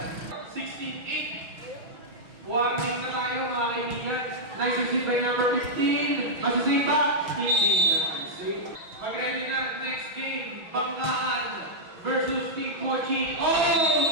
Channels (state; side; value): late; left; 6.2 ms